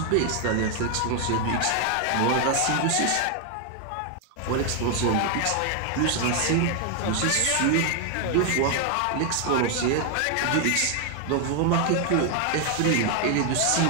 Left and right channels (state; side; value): different; both; correlation 0.01